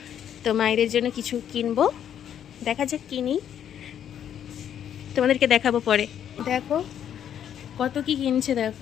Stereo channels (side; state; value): right; quieter; 9.6 dB